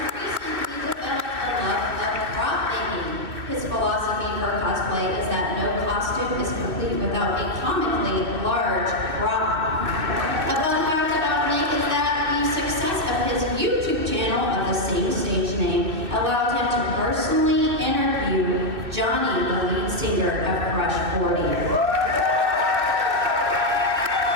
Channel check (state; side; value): late; left; 2.6 ms